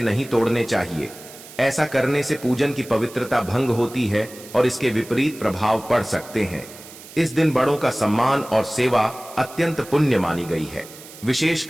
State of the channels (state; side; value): noise; right; hiss, 18 dB below the sound